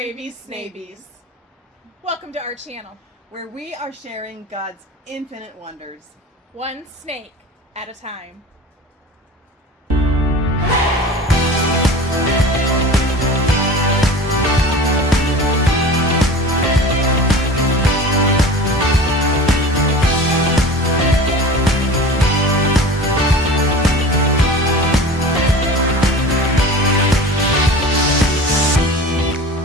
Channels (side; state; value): both; normal; correlation 0.37